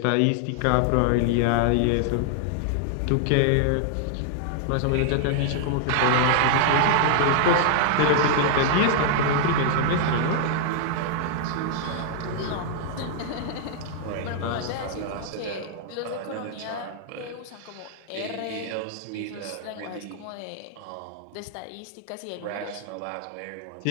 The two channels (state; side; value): different; both; correlation -0.01